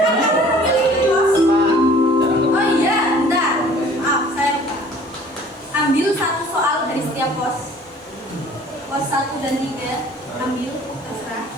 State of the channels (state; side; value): normal; both; correlation 0.52